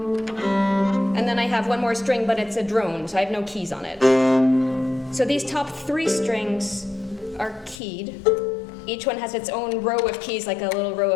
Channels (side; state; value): right; drops out; at 7.8 s